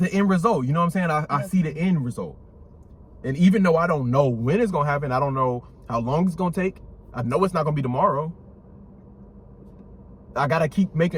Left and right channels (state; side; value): identical; both; correlation 1.00